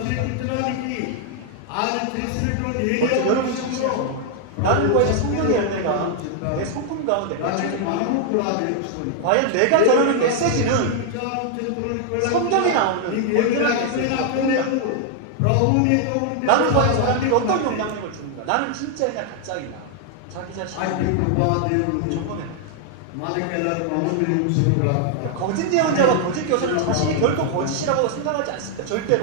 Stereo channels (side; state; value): both; different; correlation 0.00